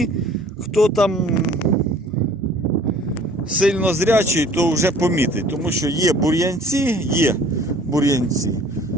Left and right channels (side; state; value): both; normal; correlation 0.52